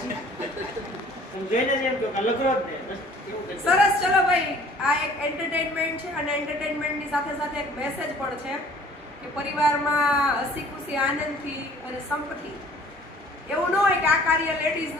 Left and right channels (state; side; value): normal; both; correlation 0.52